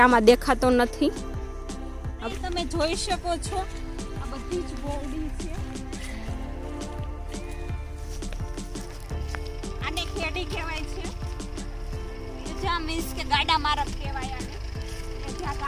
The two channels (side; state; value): both; identical; correlation 1.00